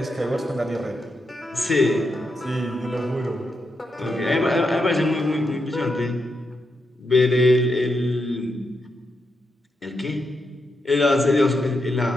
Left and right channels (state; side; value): normal; both; correlation 0.84